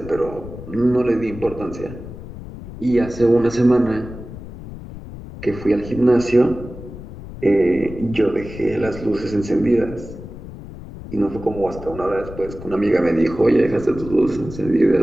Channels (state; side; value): noise; left; rumble, 13 dB below the sound